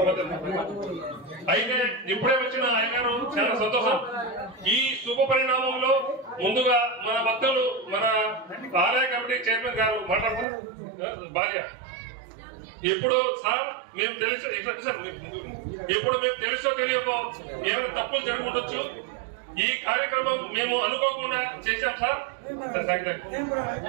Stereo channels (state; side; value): drops out; left; at 10.5 s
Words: అయితే ఇప్పుడే వచ్చిన అయ్యగారు చాలా సంతోషం. ఈ శుభ పరిణామంలో ముందుగా మన భక్తులు, మన ఆలయ కమిటీ చైర్మన్ గారు మాట్లాడతారు. భార్య ఇప్పుడు సార్ మేము తెలుసు, ఇప్పుడు మేము తెలుసో తెలియకో ఏమైనా తప్పులు జరుగుండొచ్చు. ఈ కార్యక్రమం మేము అనుకోకుండా చేశాం సార్.